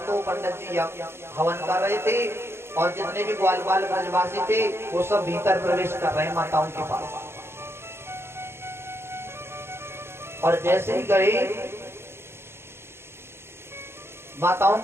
तो पंडित जी हवन कर रहे थे और जितने भी ग्वाल ब्रजवासी थे वो सब भीतर प्रवेश कर रहे हैं माताओं के पास। और जैसे ही गए माताओं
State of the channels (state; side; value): late; left; 0.12 ms